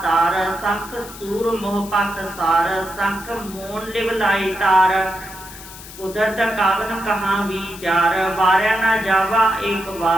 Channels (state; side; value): noise; left; hiss, 16 dB below the sound